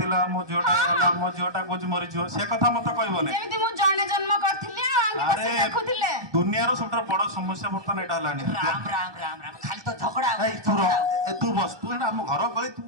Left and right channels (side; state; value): left; late; 1.2 ms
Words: ମୋ ଝିଅଟା ଗଲା, ମୋ ଝିଅଟା କହୁଛି ମରିଯିବ, ସେ କଥା ମତେ କହିବନି। ଯେମିତି ମୁଁ ଜଣେ ଜନ୍ମ କରିଥିଲି ଆଉ ଆଙ୍ଗେ ବସି ଦେଖୁଥିଲେ। ଦୁନିଆର ସବୁଠାରୁ ବଡ ସମସ୍ୟା ବର୍ତ୍ତମାନ ଏଇଟା ହେଲାଣି। ରାମ ରାମ ରାମ ରାମ ଖାଲି ତ ଝଗଡା ଏଇ ତୁ ରହ, ଏ ତୁ ବସ, ତୁ ଏଇଟା ଆମ ଘର ଗଳି, ତୁ